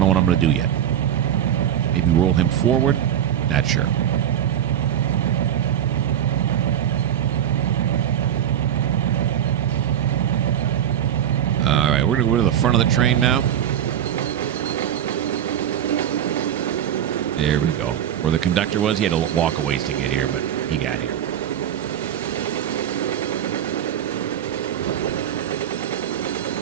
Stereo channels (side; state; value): left; quieter; 10.0 dB